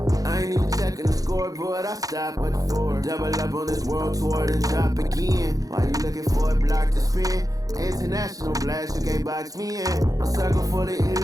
I ain't even checking the scoreboard, I stop at the 4. Double up on this world tour, then drop again. While you looking for a block to spin? International blast, you can't box me in. A circle for the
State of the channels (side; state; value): left; late; 0.17 ms